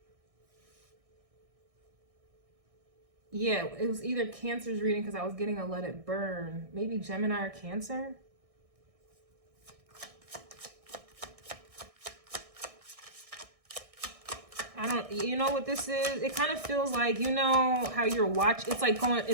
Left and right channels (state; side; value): late; left; 1.6 ms